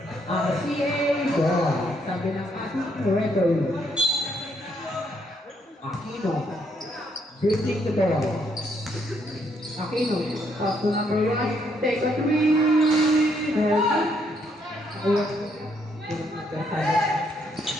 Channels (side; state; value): both; normal; correlation 0.72